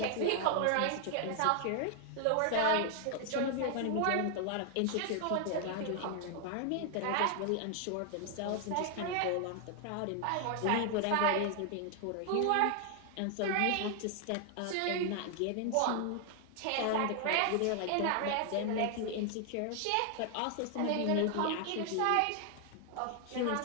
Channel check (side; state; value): both; different; correlation 0.00